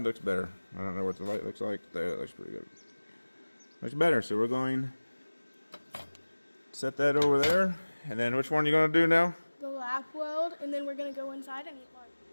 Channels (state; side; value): inverted; both; correlation -1.00